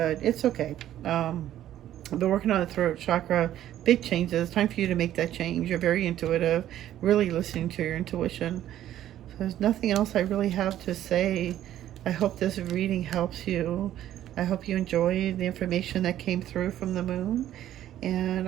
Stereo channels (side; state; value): left; quieter; 12.3 dB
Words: it's okay. I've been working on the throat chakra, big changes. Time for you to make that change. You're very intuitive, really listening to your intuition. So there's nothing else I really have to say. I hope this reading helps you. I hope you enjoyed the information that came through from the moon. And